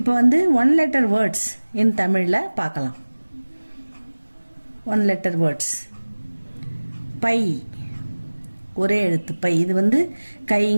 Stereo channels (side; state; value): both; inverted; correlation -1.00